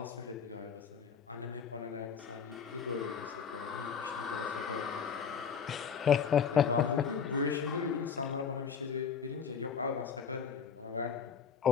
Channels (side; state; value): right; quieter; 6.7 dB